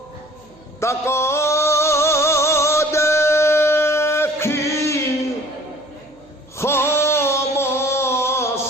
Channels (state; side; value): noise; right; hum, 29 dB below the sound